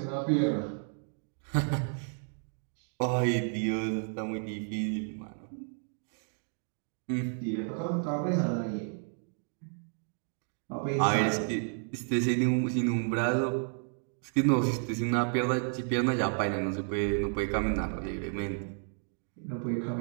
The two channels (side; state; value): left; silent; 57 dB below the other